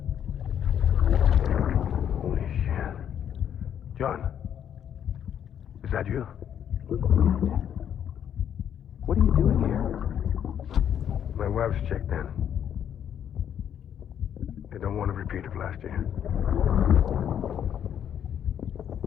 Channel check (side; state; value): right; quieter; 9.3 dB